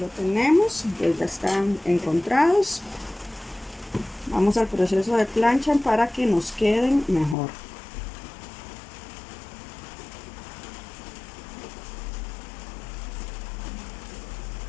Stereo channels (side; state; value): right; drops out; at 7.4 s